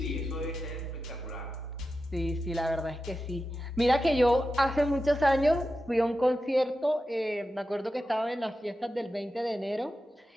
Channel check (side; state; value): both; normal; correlation 0.91